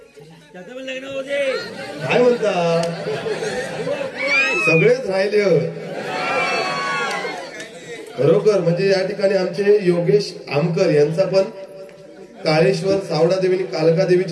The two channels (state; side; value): identical; both; correlation 1.00